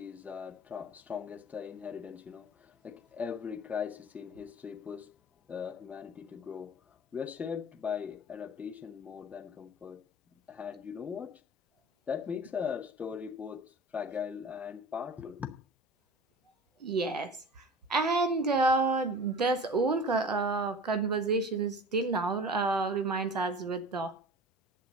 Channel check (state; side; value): normal; both; correlation 0.39